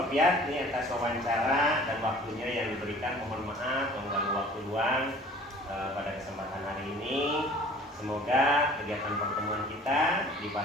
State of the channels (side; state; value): both; normal; correlation 0.48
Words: Piat ini atas wawancara dan waktunya yang diberikan. Mohon maaf mengganggu waktu luang pada kesempatan hari ini. Semoga kegiatan pertemuan kita di